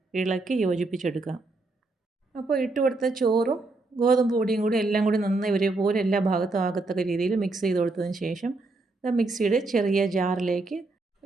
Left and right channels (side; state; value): left; quieter; 3.3 dB